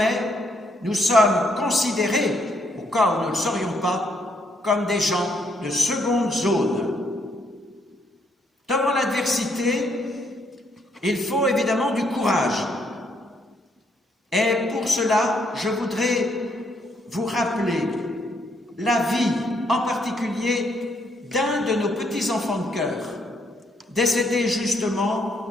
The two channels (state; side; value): normal; both; correlation 0.73